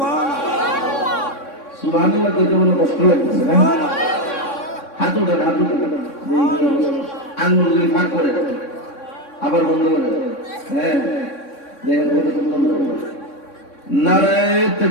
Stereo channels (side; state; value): right; late; 3.6 ms